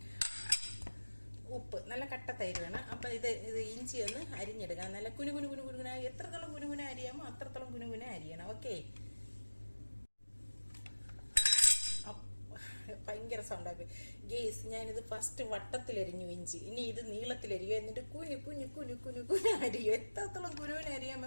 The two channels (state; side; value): inverted; both; correlation -1.00